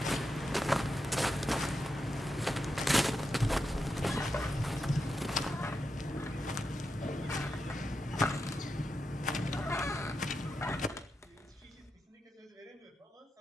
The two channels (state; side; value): normal; both; correlation 0.87